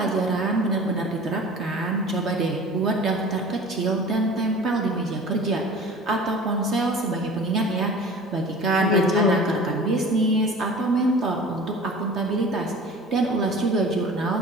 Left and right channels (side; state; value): both; normal; correlation 0.41